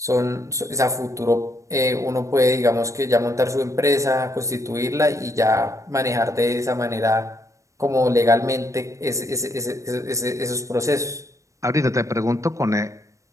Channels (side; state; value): left; late; 0.15 ms